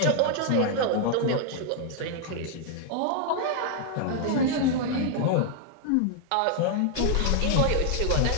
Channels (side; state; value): both; different; correlation 0.00